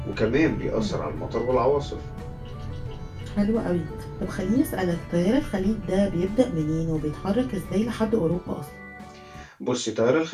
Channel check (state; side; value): identical; both; correlation 1.00